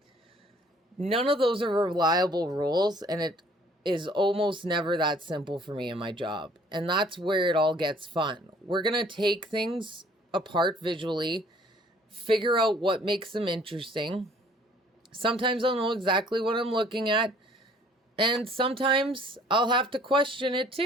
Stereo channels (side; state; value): both; normal; correlation 0.57